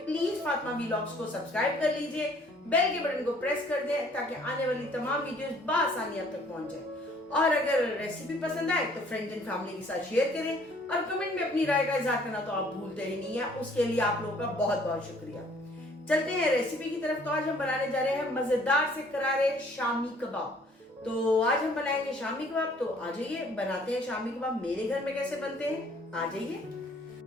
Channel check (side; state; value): both; normal; correlation 0.59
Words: प्लीज फातिमा व्लॉग्स को सब्सक्राइब कर लीजिए, बेल के बटन को प्रेस कर दें ताकि आने वाली तमाम वीडियोस बआसानी आप तक पहुंच जाए। और अगर रेसिपी पसंद आए तो फ्रेंड्स एंड फैमिली के साथ शेयर करें और कमेंट में अपनी राय का इजहार करना तो आप भूलते ही नहीं है। उसके लिए आप लोगों का बहुत बहुत शुक्रिया। चलते हैं रेसिपी की तरफ। तो आज हम बनाने जा रहे हैं मजेदार से करारे शामी कबाब। तो आज हम बनाएंगे शामी कबाब। तो आ जाइए बनाते हैं शामी कबाब। मेरे घर में कैसे बनते हैं आ जाइए।